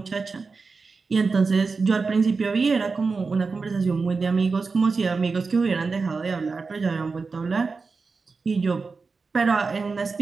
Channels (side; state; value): left; quieter; 4.4 dB